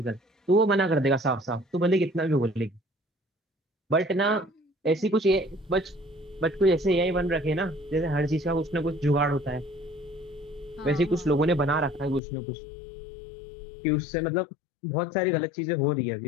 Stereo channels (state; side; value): drops out; right; at 12.2 s